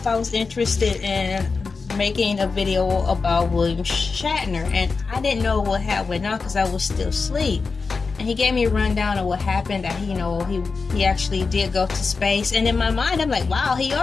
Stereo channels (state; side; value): quieter; right; 4.5 dB